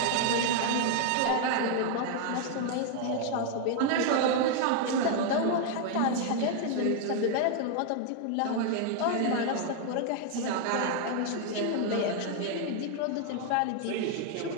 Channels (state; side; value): different; both; correlation 0.00